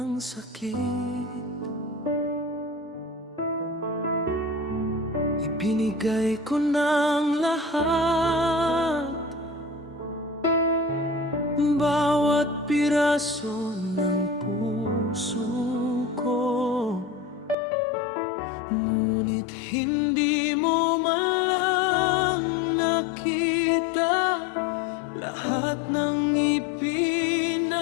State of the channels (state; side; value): drops out; right; at 17.6 s